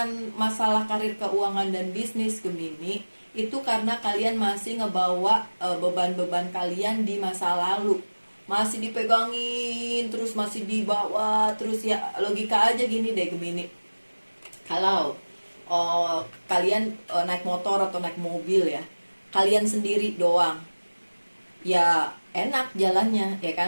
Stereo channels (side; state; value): both; inverted; correlation -1.00